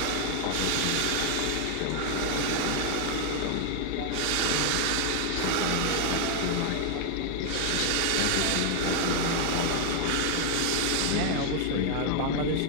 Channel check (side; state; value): both; different; correlation 0.00